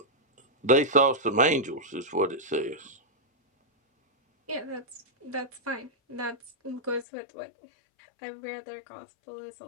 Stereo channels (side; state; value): right; drops out; at 7.1 s